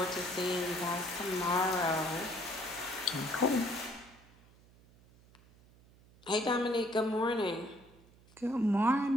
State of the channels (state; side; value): noise; right; hum, 26 dB below the sound